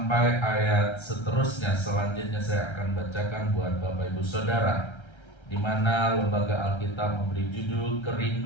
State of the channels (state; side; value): late; right; 1.3 ms